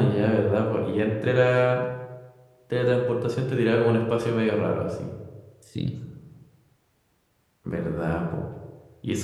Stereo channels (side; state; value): both; identical; correlation 1.00